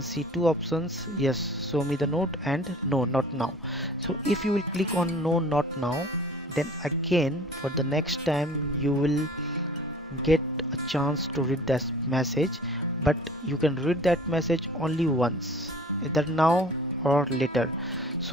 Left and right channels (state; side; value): normal; both; correlation 0.47